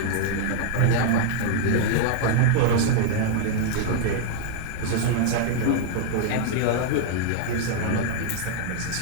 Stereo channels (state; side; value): different; both; correlation -0.01